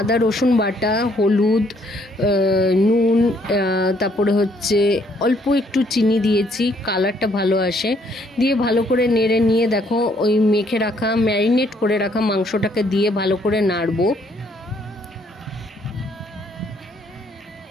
রসুন বাটা, হলুদ, নুন, তারপরে হচ্ছে অল্প একটু চিনি দিয়েছি, কালারটা ভালো আসে। দিয়ে ভালো করে নেড়ে নিয়ে দেখো ওই মেখে রাখা, ম্যারিনেট করে রাখা মাংসটাকে দিয়ে ভালো করে নাড়বো।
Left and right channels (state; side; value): normal; both; correlation 0.67